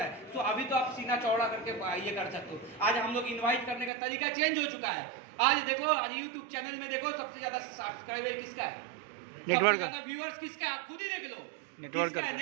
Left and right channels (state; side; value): drops out; left; at 3.9 s